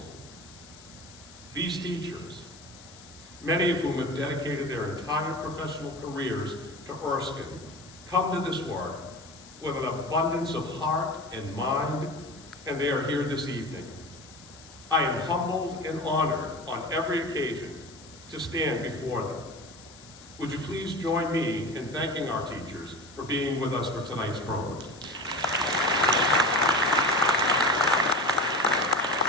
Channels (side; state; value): left; noise; hiss, 21 dB below the sound